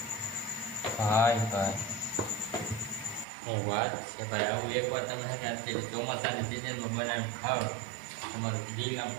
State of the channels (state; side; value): drops out; left; at 3.2 s